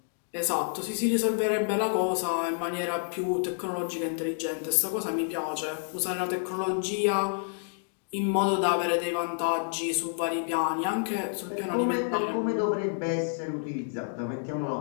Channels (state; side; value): silent; right; digital silence